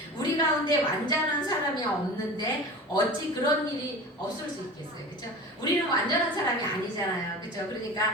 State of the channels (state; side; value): normal; both; correlation 0.34